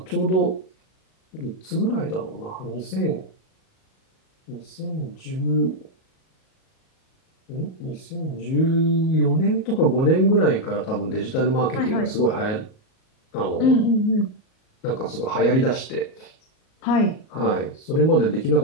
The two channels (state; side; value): late; right; 38 ms